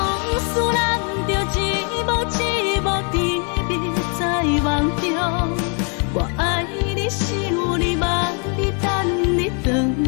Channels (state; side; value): quieter; right; 38.7 dB